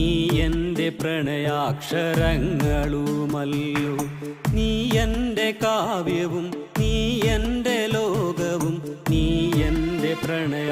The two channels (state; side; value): identical; both; correlation 1.00